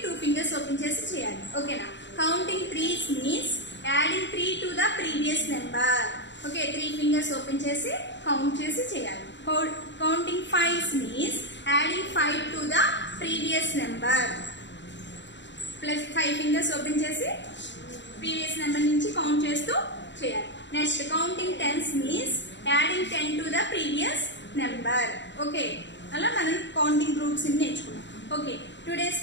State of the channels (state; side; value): late; right; 0.52 ms